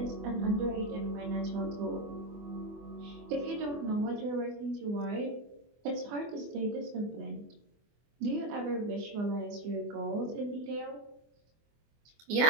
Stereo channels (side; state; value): left; late; 24 ms